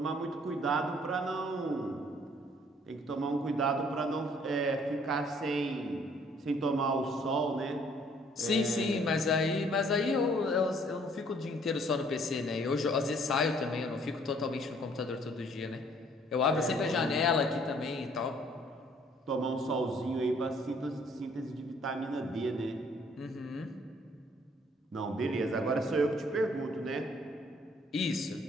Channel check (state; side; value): normal; both; correlation 0.61